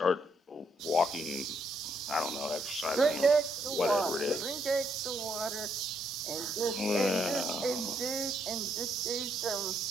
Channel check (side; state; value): both; normal; correlation 0.74